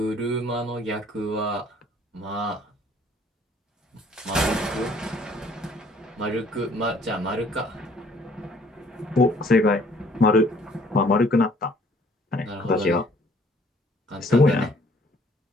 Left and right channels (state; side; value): normal; both; correlation 0.59